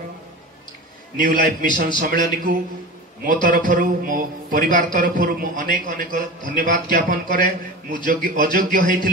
न्यू लाइफ मिशन सम्मेलन को मो तरफ मो परिवार तरफ मु अनेक अनेक धन्यवाद ज्ञापन करे मु अयोग्य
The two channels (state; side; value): normal; both; correlation 0.30